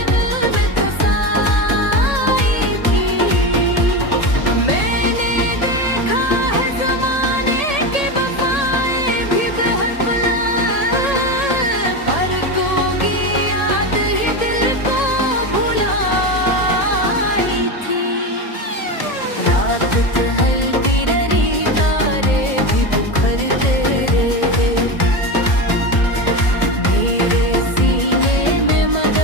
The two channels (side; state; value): right; late; 1.8 ms